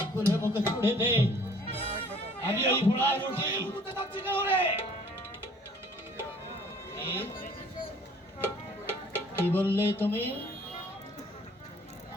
খুলে মুখে ছুড়ে দে। আমি ওই পোড়া রুটি কি বললে তুমি?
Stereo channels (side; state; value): both; normal; correlation 0.55